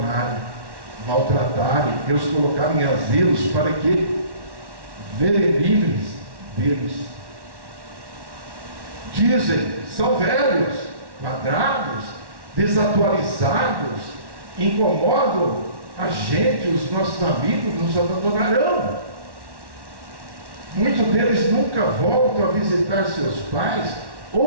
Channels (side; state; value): left; late; 1.1 ms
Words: maltratarem e os colocarem em asilos para que verem livres deles. Dizem, são velhos, quadrados, desatualizados, incomodam a gente, os nossos amigos nos abandonarão. Muitos deles nunca voltam a visitar seus pais,